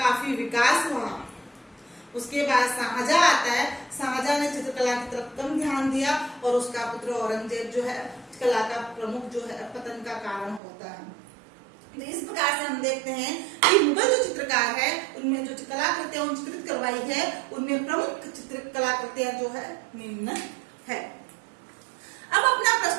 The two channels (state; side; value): drops out; left; at 10.6 s